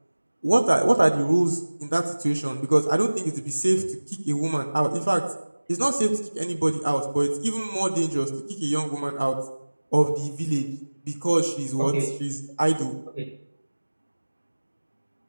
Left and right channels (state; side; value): inverted; both; correlation -1.00